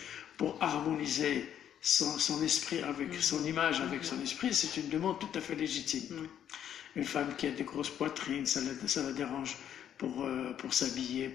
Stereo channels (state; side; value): quieter; right; 9.8 dB